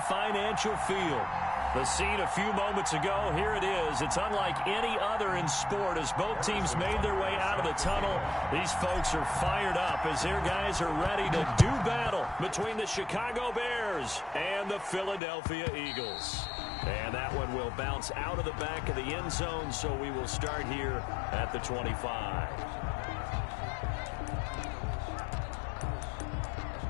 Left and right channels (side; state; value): right; drops out; at 15.2 s